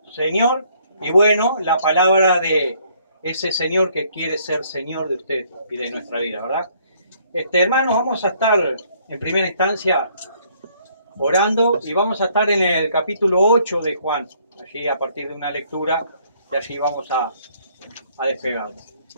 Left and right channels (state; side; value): inverted; both; correlation -0.65